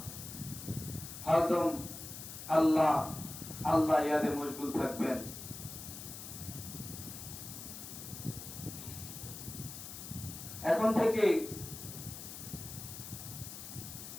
হরদম আল্লাহ আল্লাহ ইয়াদে মশগুল থাকবেন। এখন থেকে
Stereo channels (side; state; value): left; noise; hiss, 10 dB below the sound